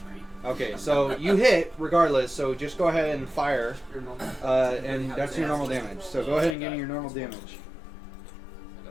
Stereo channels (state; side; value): drops out; right; at 6.6 s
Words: 3. Okay, so you hit regardless. So just go ahead and fire, Your normal. and that's your normal damage. So go ahead and give me your normal damage. I